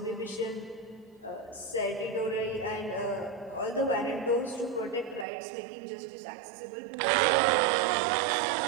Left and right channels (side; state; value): left; drops out; at 5.2 s